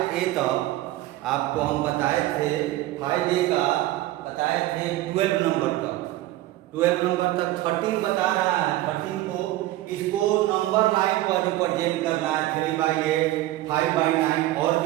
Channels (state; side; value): quieter; left; 15.9 dB